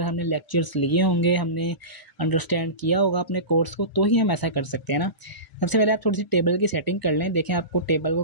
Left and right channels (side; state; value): right; late; 1.0 ms